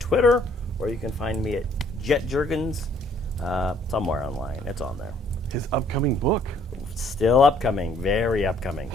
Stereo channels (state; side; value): normal; both; correlation 0.63